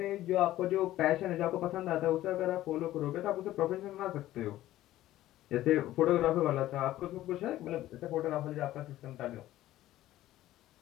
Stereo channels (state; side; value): quieter; right; 14.6 dB